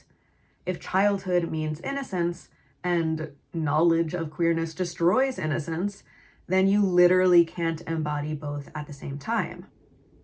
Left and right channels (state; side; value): identical; both; correlation 1.00